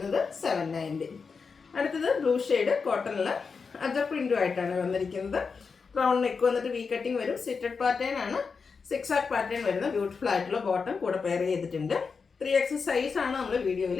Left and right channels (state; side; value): quieter; right; 5.2 dB